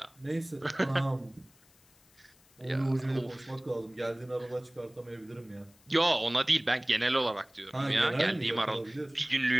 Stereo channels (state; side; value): noise; left; hiss, 30 dB below the sound